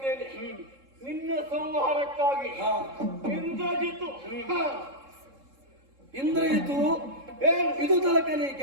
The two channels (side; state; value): left; late; 3.7 ms